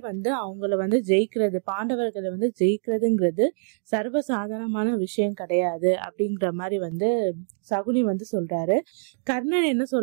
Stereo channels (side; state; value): left; silent; digital silence